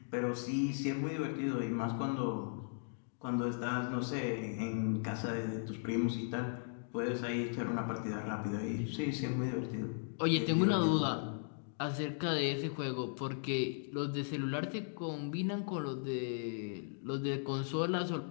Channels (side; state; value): right; silent; digital silence